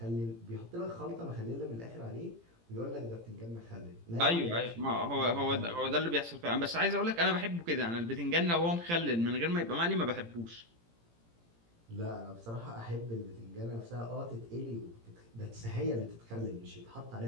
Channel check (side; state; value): left; late; 18 ms